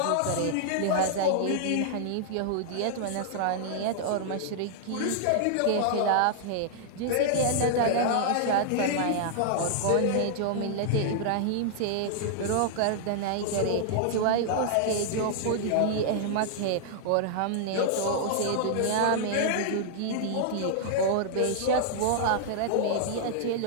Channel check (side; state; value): both; different; correlation -0.01